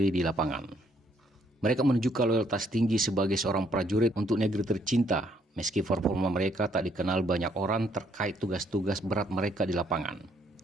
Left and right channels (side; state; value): both; normal; correlation 0.68